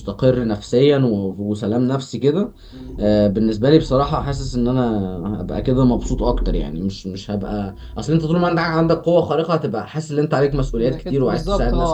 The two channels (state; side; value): identical; both; correlation 1.00